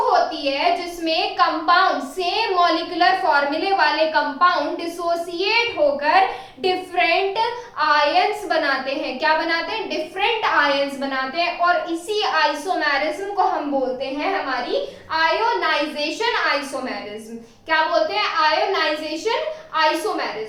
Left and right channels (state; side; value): identical; both; correlation 1.00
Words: होती है जिसमें कंपाउंड, सेम मॉलिक्यूलर फॉर्मूले वाले कंपाउंड डिसोसिएट होकर डिफरेंट आयंस बनाते हैं। क्या बनाते हैं, डिफरेंट आयंस बनाते हैं। और इसी आइसोमेरिज्म को हम बोलते हैं हमारी आयोनाइजेशन आइसोमेरिज्म। क्या बोलते हैं, आयोनाइजेशन